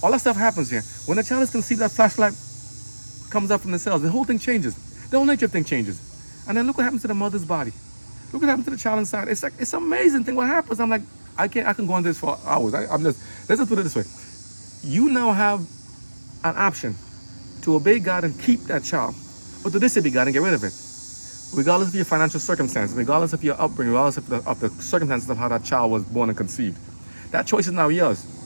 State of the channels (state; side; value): inverted; both; correlation -1.00